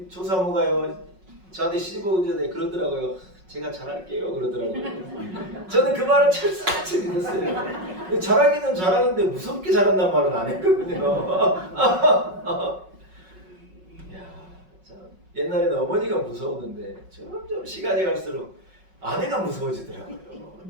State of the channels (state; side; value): late; left; 5.4 ms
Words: 조사모가요 저한테 시집 오기 전에 그러더라고요. 제가 잘할게요 그러더라고요. 저는 그 말을 철석같이 믿었어요. 잘하기는 잘하는데 무섭게 잘한다는 말은 안 했거든요. 이야, 참 옛날에는 어머니가 무서웠는데 점점 시간이 갈수록 아내가 무서워지더라고요.